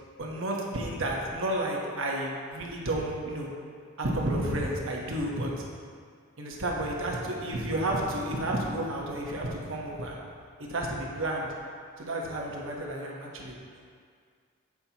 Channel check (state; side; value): normal; both; correlation 0.23